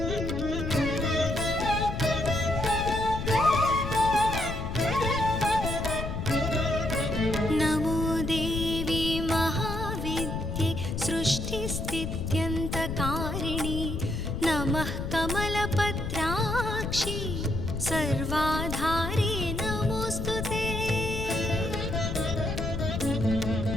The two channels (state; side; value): noise; left; rumble, 4 dB below the sound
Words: नमो देवी महाविद्ये सृष्टिस्थित्यन्तकारिणि नमः कमलपत्राक्षि सर्वाधारे नमोऽस्तु ते